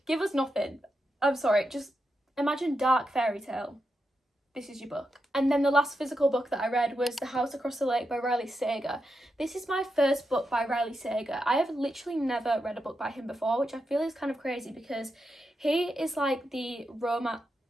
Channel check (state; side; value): normal; both; correlation 0.86